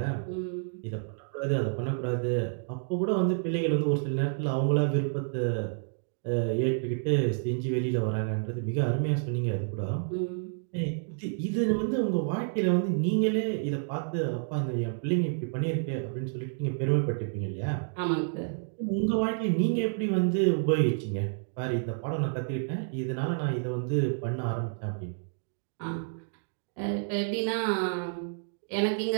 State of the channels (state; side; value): silent; left; digital silence